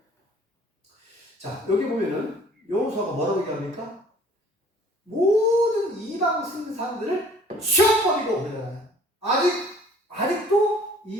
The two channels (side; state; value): both; normal; correlation 0.54